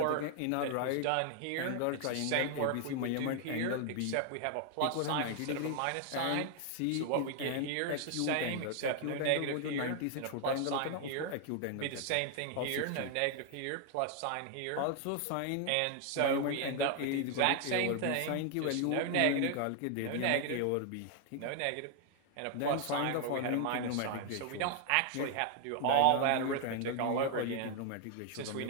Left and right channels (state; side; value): different; both; correlation 0.00